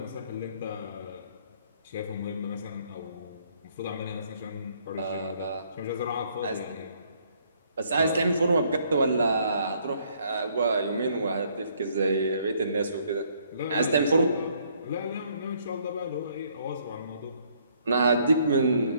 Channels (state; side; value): inverted; both; correlation -0.66